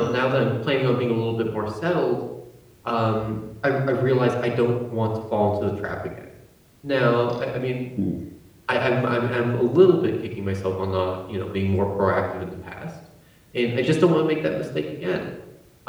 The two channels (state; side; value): identical; both; correlation 1.00